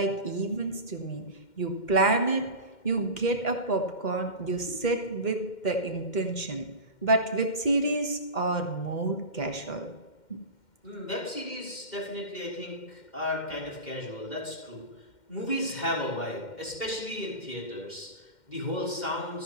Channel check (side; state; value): right; late; 2.1 ms